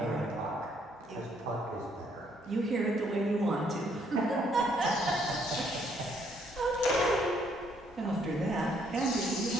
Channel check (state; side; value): noise; left; hum, 29 dB below the sound